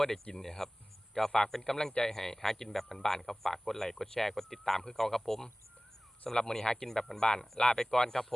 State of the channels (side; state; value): both; normal; correlation 0.98